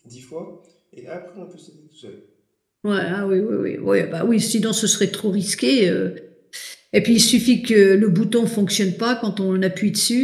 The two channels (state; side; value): identical; both; correlation 1.00